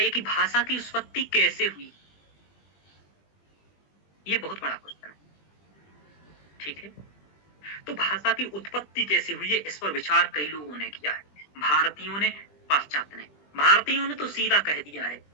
कि भाषा की उत्पत्ति कैसे हुई, ये बहुत बड़ा क्वेश्चन है, ठीक है? तो भाषा की उत्पत्ति कैसे हुई है, इस पर विचार कई लोगों ने किया है। भारतीयों ने, पाश्चात्य ने। भारतीयों ने तो सीधा कह दिया है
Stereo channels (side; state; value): right; late; 20 ms